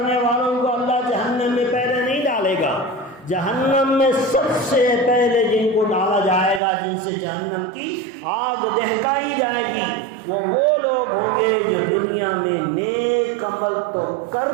والوں کو اللہ جہنم میں پہلے نہیں ڈالے گا۔ جہنم میں سب سے پہلے جن کو ڈالا جائے گا، جن سے جہنم کی آگ دہکائی جائے گی، وہ لوگ ہوں گے جو دنیا میں نیک عمل تو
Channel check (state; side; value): drops out; left; at 6.6 s